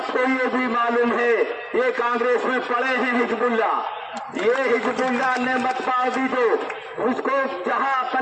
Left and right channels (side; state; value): both; identical; correlation 1.00